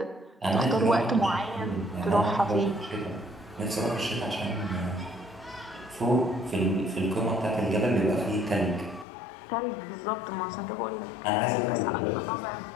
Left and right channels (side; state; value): right; drops out; at 9.1 s